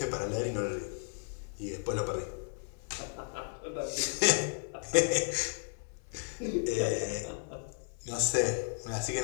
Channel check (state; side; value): silent; right; 55 dB below the other